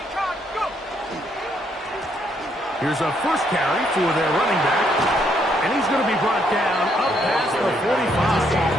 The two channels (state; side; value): normal; both; correlation 0.72